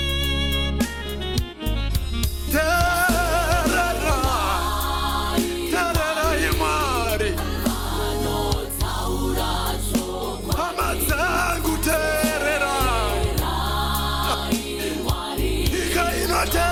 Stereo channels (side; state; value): both; identical; correlation 1.00